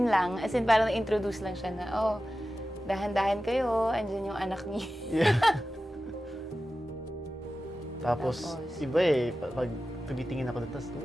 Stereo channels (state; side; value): normal; both; correlation 0.94